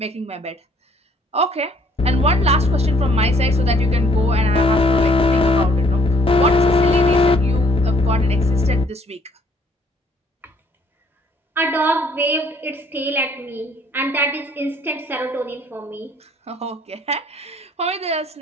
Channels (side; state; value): both; normal; correlation 0.63